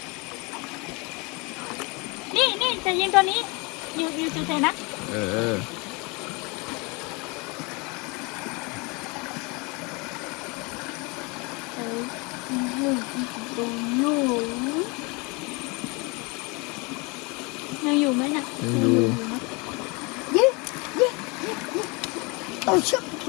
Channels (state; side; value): quieter; right; 28.5 dB